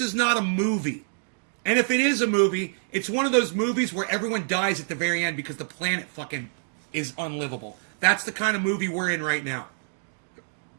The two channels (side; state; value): left; silent; digital silence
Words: is not a movie. And if it is a movie, it's one of those movies where everyone dies at the very end because the planet fucking is unlivable. That's the kind of movie we're in right now.